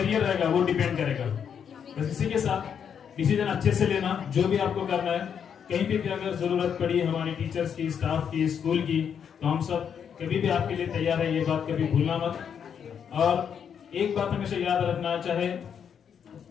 रहेगा वो डिपेंड करेगा। बस इसी के साथ डिसीजन अच्छे से लेना, जो भी आपको करना है। कहीं भी अगर जरूरत पड़ी हमारे टीचर्स की, स्टाफ की, स्कूल की, तो हम सब कभी भी आपके लिए तैयार है, ये बात कभी भूलना मत। और एक बात हमेशा याद रखना, चाहे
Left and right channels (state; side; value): quieter; right; 7.7 dB